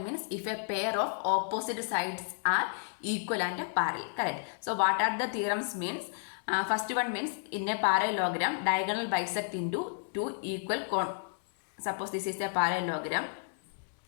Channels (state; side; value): silent; right; digital silence